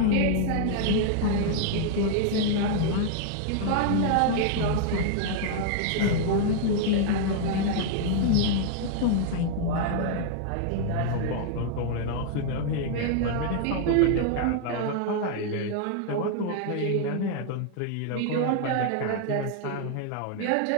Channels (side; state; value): both; different; correlation 0.00